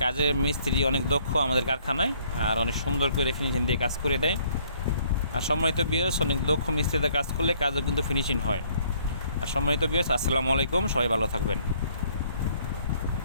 কাজের মিস্ত্রি অনেক দক্ষ আমাদের কারখানায়, আর অনেক সুন্দর করে ফিনিশিং দিয়ে কাজ করে দেয়। আর সম্মানিত ভিউয়ার্স, অনেক দক্ষ মিস্ত্রিতে কাজ করলে কাজও কিন্তু ফিনিশিং হয়। আর সম্মানিত ভিউয়ার্স, আসসালামু আলাইকুম, সবাই ভালো থাকবেন।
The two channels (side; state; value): both; inverted; correlation -0.63